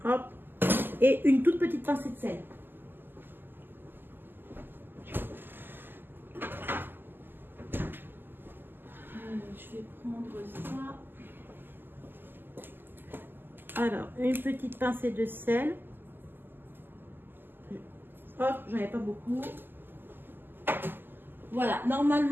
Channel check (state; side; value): late; left; 0.094 ms